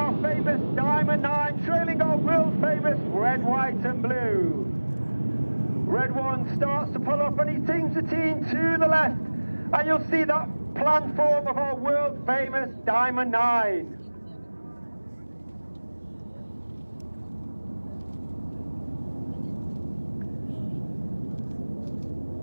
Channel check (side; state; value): both; inverted; correlation -1.00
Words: famous Diamond 9, trailing our world famous red, white and blue. Red 1 starts to pull up and he teams the team to the left, and you'll see that platform of our world famous Diamond 9.